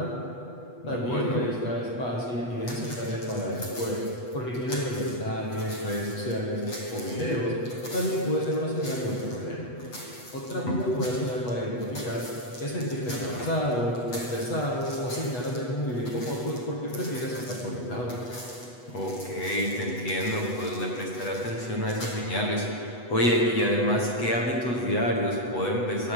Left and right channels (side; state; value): right; late; 8.2 ms